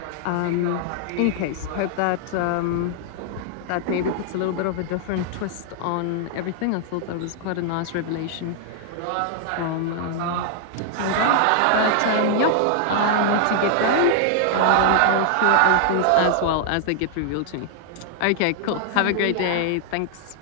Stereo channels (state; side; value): different; both; correlation -0.01